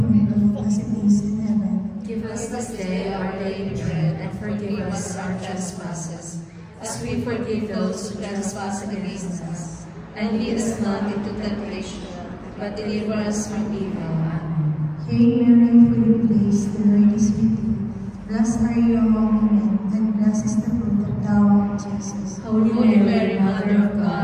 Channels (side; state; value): both; identical; correlation 1.00